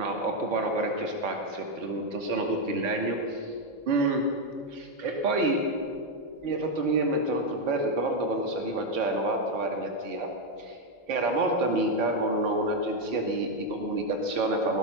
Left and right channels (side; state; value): left; late; 4.6 ms